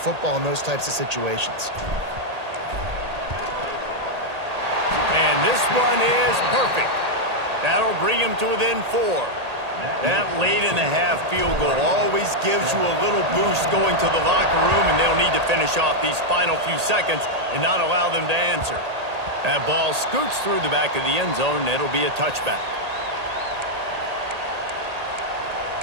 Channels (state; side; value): late; left; 1.8 ms